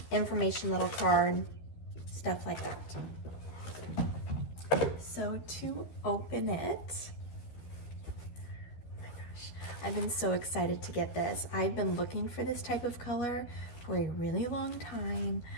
information little card, stuff like that. So to open it, oh my gosh, I've been so excited to get this. I've been looking for this type of color for a really long time.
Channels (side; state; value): right; late; 12 ms